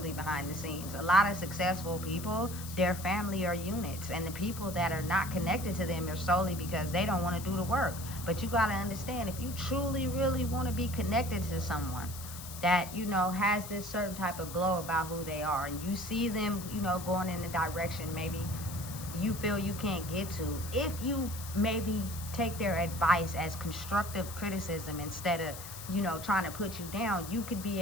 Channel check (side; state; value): left; noise; hiss, 11 dB below the sound